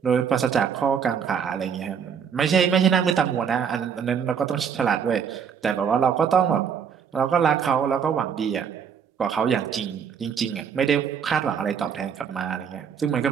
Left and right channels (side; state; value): left; quieter; 7.2 dB